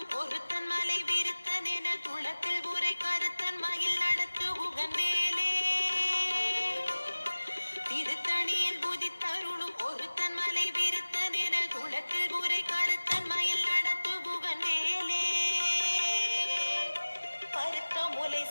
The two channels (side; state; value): both; inverted; correlation -1.00